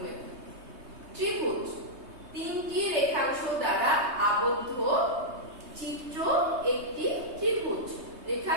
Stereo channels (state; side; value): late; left; 3.2 ms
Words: ত্রিভুজ তিনটি রেখাংশ দ্বারা আবদ্ধ চিত্র একটি ত্রিভুজ।